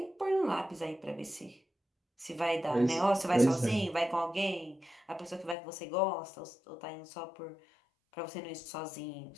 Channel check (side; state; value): right; drops out; at 5.6 s